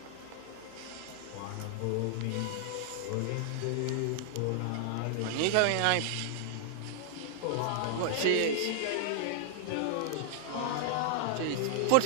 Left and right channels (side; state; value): both; different; correlation -0.01